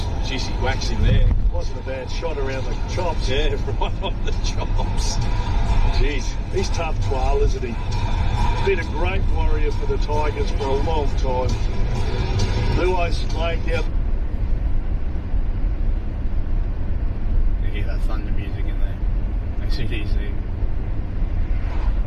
Jeez, he whacks him there. Wasn't a bad shot around the chops. Yeah, right on the chops. Jeez. He's tough, Twal, isn't he? Been a great warrior for the Tigers for a long time. Luai's playing down. You hear that thunder music in there. ACDC.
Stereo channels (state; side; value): identical; both; correlation 1.00